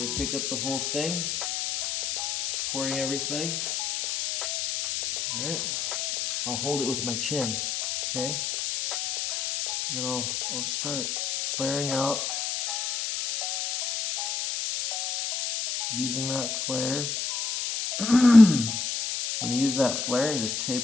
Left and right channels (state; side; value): noise; left; hiss, 2 dB below the sound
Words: gonna pick up the whole thing, supporting everything. All right. I'll hold it with my chin. Okay. And then I'll start flaring out using that flare. I'm going to use that flare and just